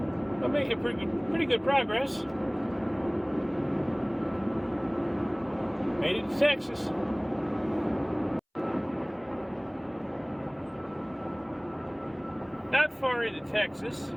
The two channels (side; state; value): both; identical; correlation 1.00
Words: We're making pretty good progress. Made it to Texas. Not far into Texas.